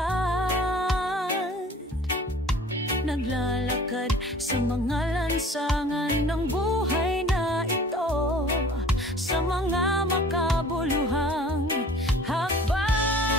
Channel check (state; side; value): normal; both; correlation 0.48